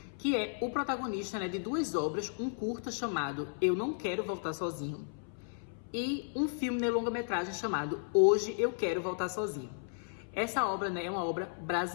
que é o protagonista, né, de 2 obras, um curta chamado Eu Não Quero Voltar Sozinho e um filme de longa-metragem chamado Hoje Eu Quero Voltar Sozinho. Essa obra, né, é uma obra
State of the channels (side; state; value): right; silent; 55 dB below the other